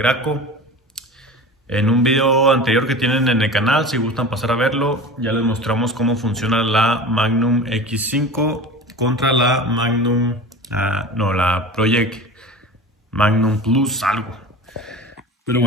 En un video anterior que tienen en el canal, si gustan pasar a verlo, ya les mostramos cómo funciona la Magnum X5 contra la Magnum, la Project Magnum Plus algo. Pero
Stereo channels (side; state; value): both; normal; correlation 0.34